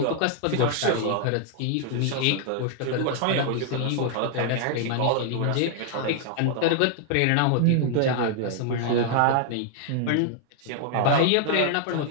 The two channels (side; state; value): both; different; correlation 0.00